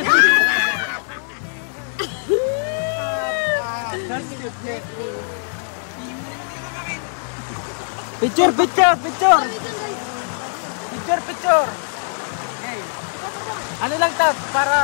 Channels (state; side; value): silent; right; 65 dB below the other